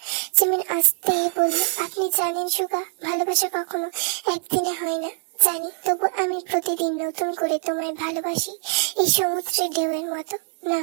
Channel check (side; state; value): left; silent; 58 dB below the other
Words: জিমিন আস্তে বলল, আপনি জানেন সুগা, ভালোবাসা কখনো একদিনে হয় না। জানি, তবু আমি প্রতিদিন নতুন করে তোমায় ভালোবাসি, এই সমুদ্রের ঢেউয়ের মতো। না,